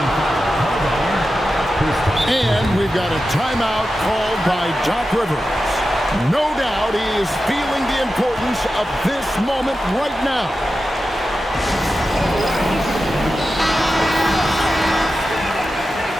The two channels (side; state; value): both; normal; correlation 0.92